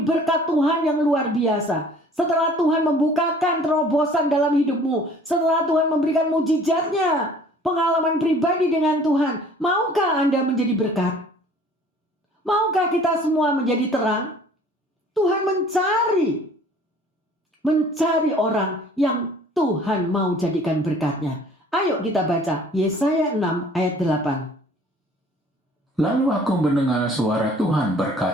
berkat Tuhan yang luar biasa, setelah Tuhan membukakan terobosan dalam hidupmu, setelah Tuhan memberikan mujizatnya, pengalaman pribadi dengan Tuhan, maukah Anda menjadi berkat? Maukah kita semua menjadi terang? Tuhan mencari orang yang Tuhan mau jadikan berkatnya. Ayo kita baca Yesaya 6 ayat 8. Lalu aku mendengar suara Tuhan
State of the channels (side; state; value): both; normal; correlation 0.52